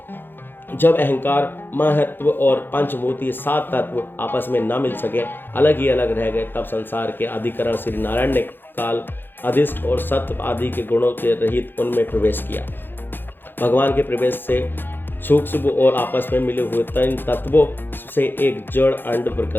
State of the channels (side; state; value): right; late; 0.099 ms